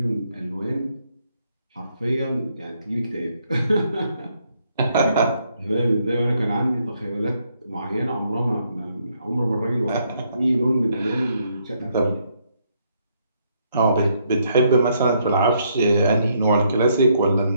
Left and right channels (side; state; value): both; inverted; correlation -0.73